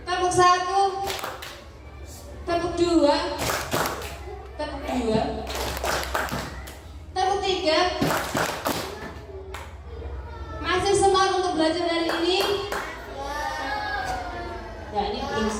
Tepuk satu. Tepuk dua. Tepuk dua. Tepuk tiga. Masih semangat untuk belajar hari ini? Ya, ini belum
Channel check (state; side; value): identical; both; correlation 1.00